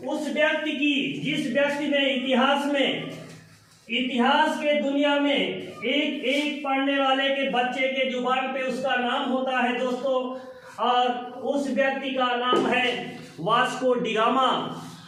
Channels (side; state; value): both; identical; correlation 1.00